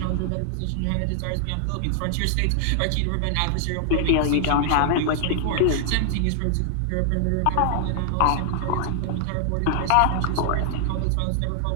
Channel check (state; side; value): different; both; correlation 0.00